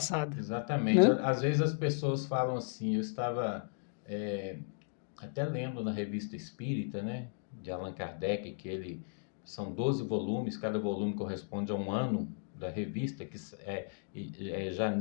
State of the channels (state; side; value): silent; right; digital silence